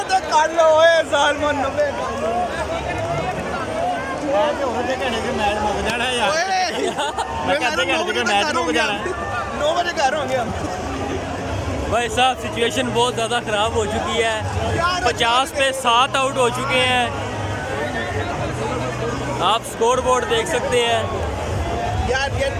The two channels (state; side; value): identical; both; correlation 1.00